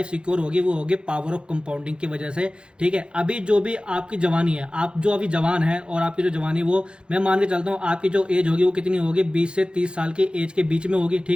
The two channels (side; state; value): left; late; 0.054 ms